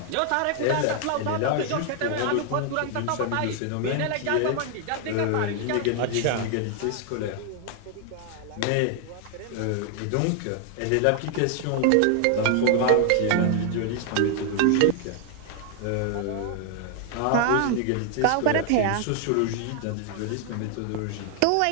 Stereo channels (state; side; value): different; both; correlation 0.00